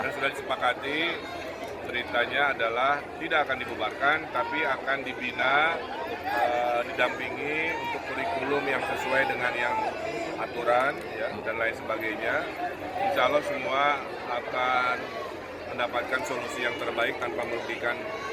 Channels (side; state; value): both; identical; correlation 1.00